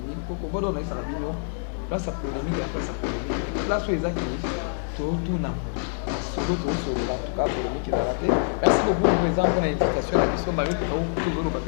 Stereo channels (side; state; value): right; silent; digital silence